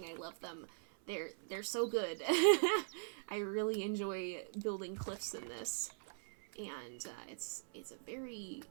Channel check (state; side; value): silent; left; 50 dB below the other